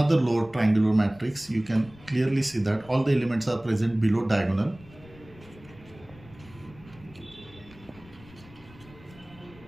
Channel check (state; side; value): noise; left; rumble, 22 dB below the sound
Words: lower triangular matrix. You can clearly see that all the elements are present below diagonal.